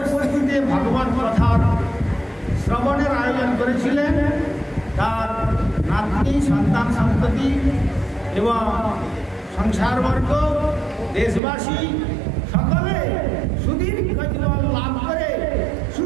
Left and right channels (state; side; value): drops out; left; at 11.4 s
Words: ভগবান কথার শ্রবণের আয়োজন করেছিলেন। তার নাতনি, সন্তান সন্ততি এবং সংসারবর্গ, দেশবাসী সকলে সুদীর্ঘ জীবন লাভ করে